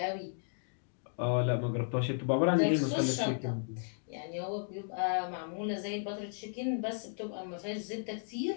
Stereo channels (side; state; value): right; silent; digital silence